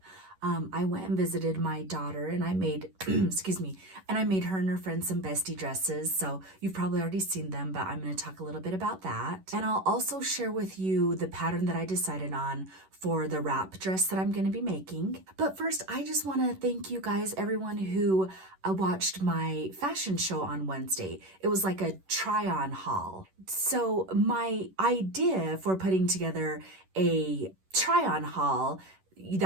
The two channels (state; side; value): late; left; 11 ms